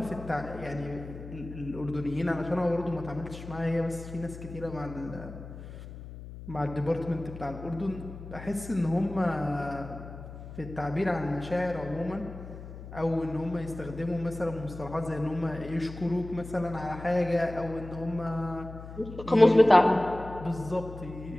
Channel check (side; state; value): left; noise; hum, 12 dB below the sound